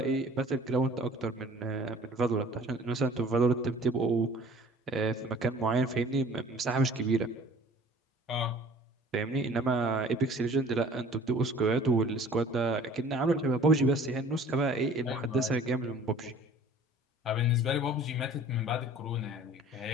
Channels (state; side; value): normal; both; correlation 0.49